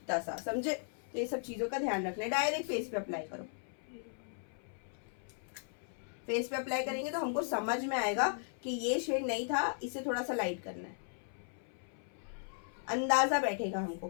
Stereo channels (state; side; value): silent; right; 53 dB below the other